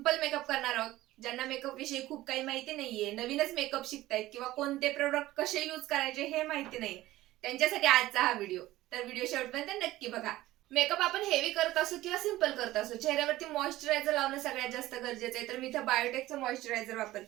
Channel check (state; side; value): quieter; left; 16.4 dB